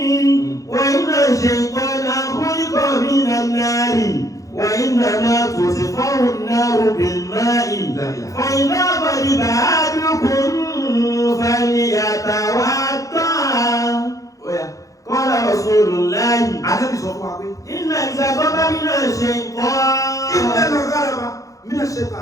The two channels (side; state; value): right; late; 0.16 ms